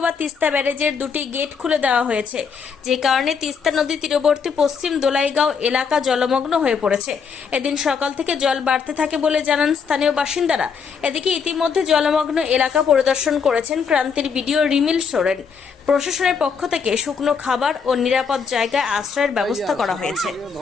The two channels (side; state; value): right; quieter; 6.1 dB